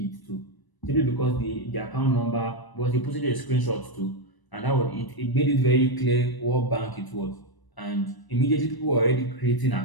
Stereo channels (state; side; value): late; right; 1.0 ms